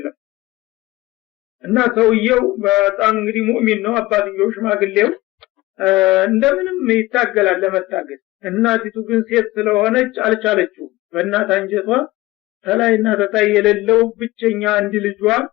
እና ሰውየው በጣም እንግዲህ ሙእሚን ነው። አባትየው ሽማግሌው እንደምንም ይታገላል ለመታገል። እናቲቱ ግን ሴት ስለሆነች አልቻለችው። በእናት አንጀቷ ተላይና ተታይ የሌለው ብቸኛ አንድ ልጇ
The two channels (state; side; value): quieter; right; 18.8 dB